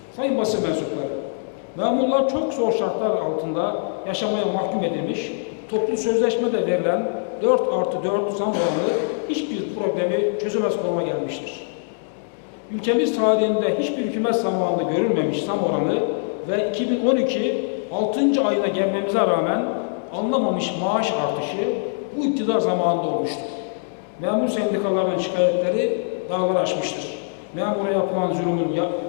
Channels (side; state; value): right; silent; digital silence